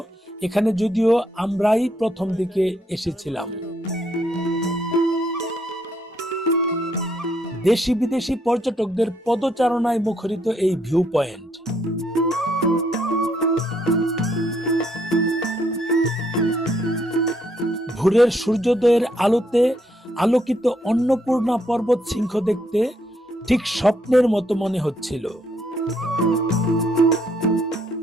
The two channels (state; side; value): normal; both; correlation 0.73